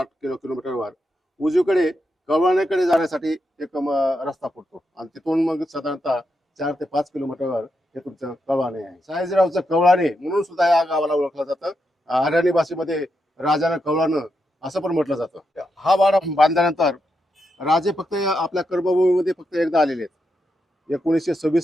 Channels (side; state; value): both; normal; correlation 0.84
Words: किलोमीटरवर उजवीकडे कवळाण्याकडे जाण्यासाठी एक रस्ता पडतो. आणि तिथून मग साधारणतः 4 ते 5 किलोमीटरवर हे तुमचं कवळाणे आहे. सयाजीरावचं कवळाणे म्हणून सुद्धा या गावाला ओळखलं जातं. हरियाणी भाषेमध्ये राजानं कवळानं असं पण म्हटलं जातं. हा वाडा बांधल्यानंतर राजे फक्त आपल्या कर्मभूमीमध्ये फक्त एकदा आलेले आहेत.